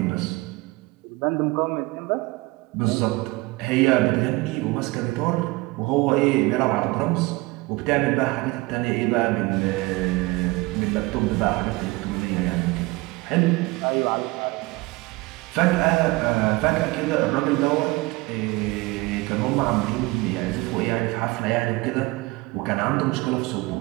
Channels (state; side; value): quieter; left; 22.4 dB